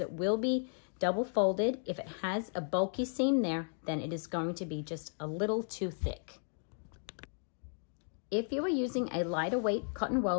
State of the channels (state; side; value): silent; right; 55 dB below the other